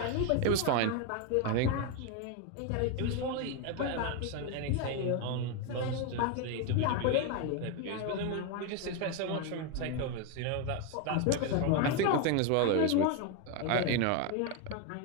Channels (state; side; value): different; both; correlation 0.01